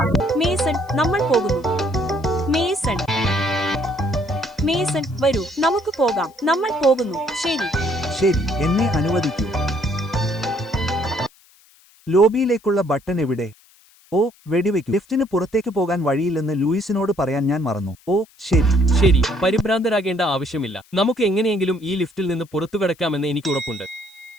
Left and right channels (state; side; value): noise; left; hiss, 29 dB below the sound